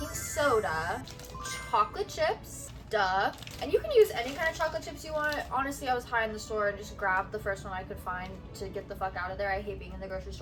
soda, chocolate chips, duh. And you can use any kind of chocolate chips you want. Honestly, I was high in the store and just grabbed the first one I could find to get the fuck out of there. I hate being in the grocery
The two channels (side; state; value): both; identical; correlation 1.00